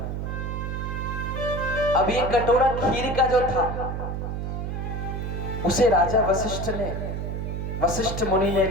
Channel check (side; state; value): right; noise; hum, 3 dB below the sound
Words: अब ये कटोरा खीर का जो था उसे राजा वशिष्ठ मुनि ने